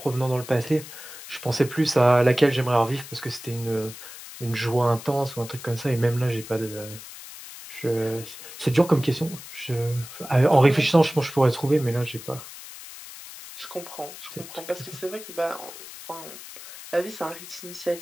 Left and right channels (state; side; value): noise; left; hiss, 14 dB below the sound